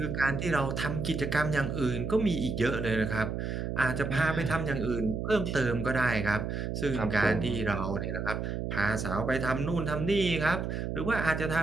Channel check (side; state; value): right; noise; hum, 3 dB below the sound